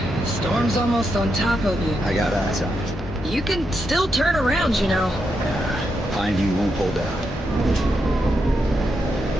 Storm's almost on top of you. I got eyes on it. You can still turn around, you know. Yeah, Pineview won't hold out.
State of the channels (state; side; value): normal; both; correlation 0.83